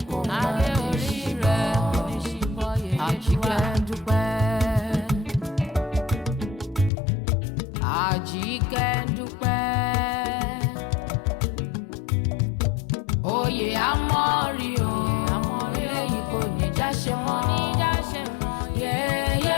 kò má ní ṣíbọ̀ yèyé Àjíkẹ́ndúpẹ́. Àjíkẹ́ndúpẹ́, oyè àmọ́rí o, eléyìí kò ní já ṣe mọ́. Yèyé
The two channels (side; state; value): right; drops out; at 6.9 s